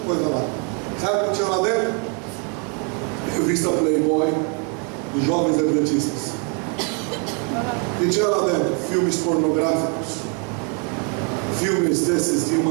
coisa lá. Sabe o que tinha lá dentro? Revista Playboy dos jovens adventistas. E tinha lá dentro filmes pornográficos, filmes desses de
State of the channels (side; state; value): left; quieter; 37.3 dB